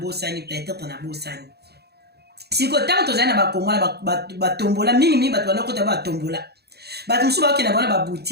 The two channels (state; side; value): late; left; 0.47 ms